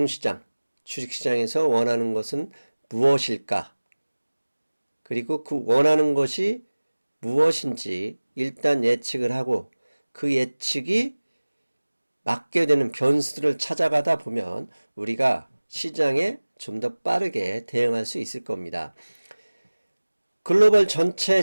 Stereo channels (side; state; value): both; inverted; correlation -1.00